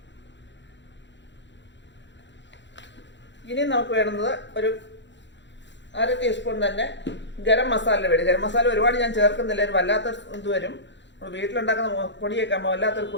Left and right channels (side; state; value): right; late; 0.52 ms